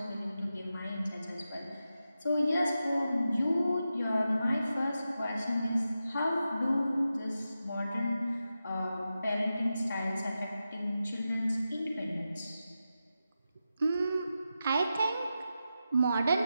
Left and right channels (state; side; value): inverted; both; correlation -0.90